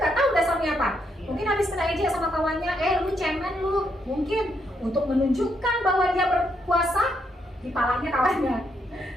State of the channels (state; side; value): normal; both; correlation 0.77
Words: nggak tahu dasarnya apa. Mungkin habis kena ejek sama kawannya, lu cemen lu. Mungkin untuk menunjukkan bahwa dia berkuasa, dipalanya kawannya.